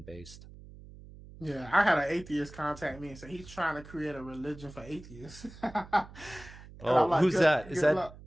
based. Yeah, I had an atheist contact me and say he's trying to create a religion for atheists. Like, who's that? Is that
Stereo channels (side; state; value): right; noise; hum, 18 dB below the sound